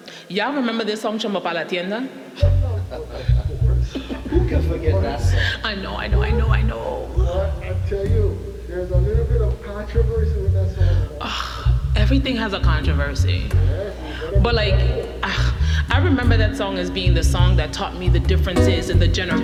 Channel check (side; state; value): both; identical; correlation 1.00